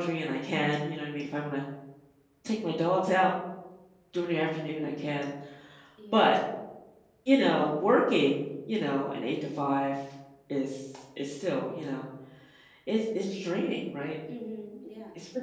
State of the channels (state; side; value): identical; both; correlation 1.00